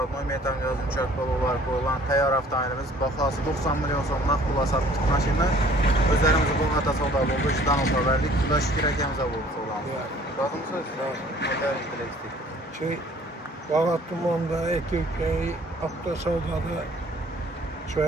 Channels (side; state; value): both; normal; correlation 0.54